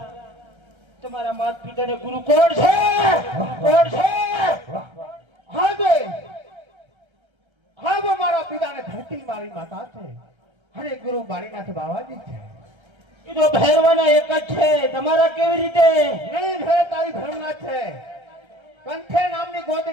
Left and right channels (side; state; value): left; late; 1.3 ms